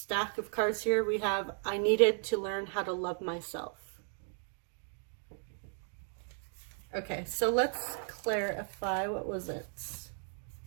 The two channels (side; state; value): left; silent; 54 dB below the other